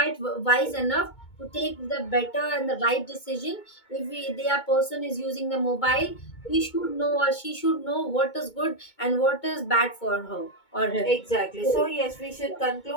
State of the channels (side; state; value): right; late; 2.2 ms